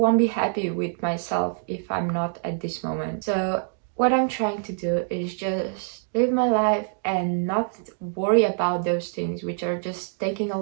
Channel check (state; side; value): silent; left; digital silence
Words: be happy with myself if I'm not at this moment. So what I'm trying to do is just live my life and not worry about those things which are just taking a